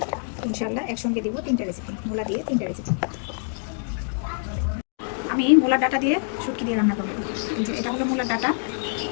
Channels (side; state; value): right; silent; 62 dB below the other